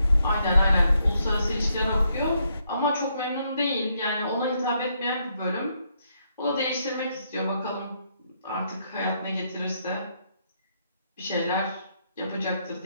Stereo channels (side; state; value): both; inverted; correlation -0.76